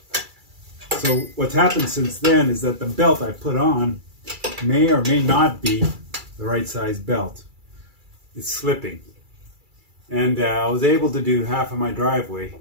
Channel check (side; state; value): left; late; 2.3 ms